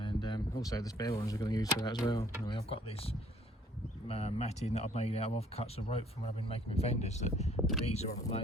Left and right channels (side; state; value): both; normal; correlation 0.60